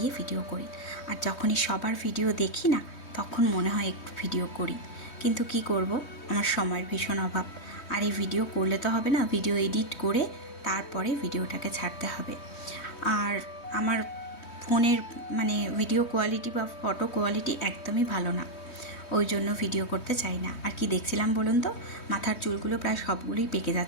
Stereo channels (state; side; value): late; right; 3.2 ms